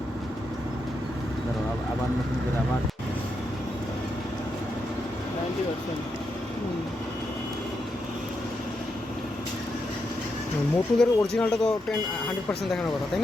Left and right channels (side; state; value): both; normal; correlation 0.83